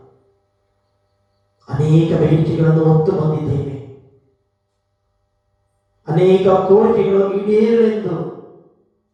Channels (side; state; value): both; identical; correlation 1.00